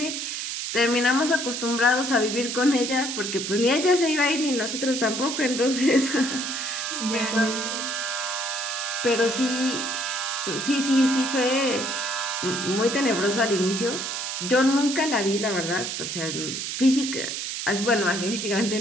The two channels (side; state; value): right; noise; hiss, 4 dB below the sound